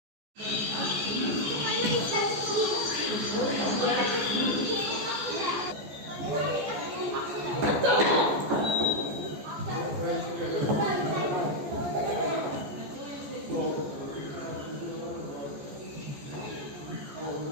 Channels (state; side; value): late; left; 14 ms